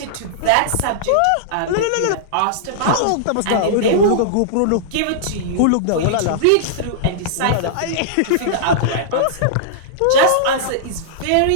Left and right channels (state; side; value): different; both; correlation -0.02